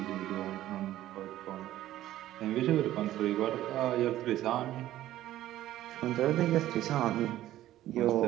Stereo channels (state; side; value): quieter; left; 13.9 dB